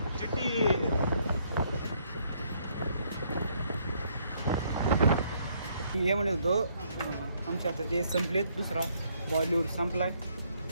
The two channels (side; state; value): both; inverted; correlation -0.69